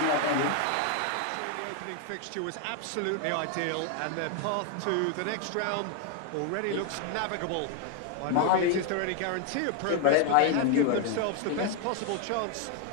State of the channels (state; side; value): different; both; correlation 0.01